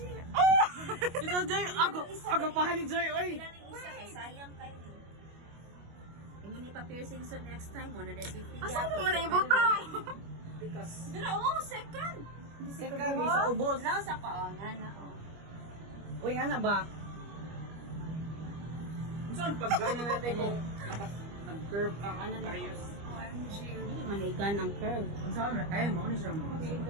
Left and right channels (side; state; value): left; late; 25 ms